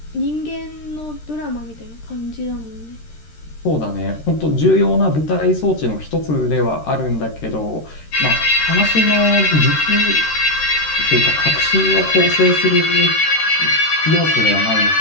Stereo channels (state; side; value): late; right; 13 ms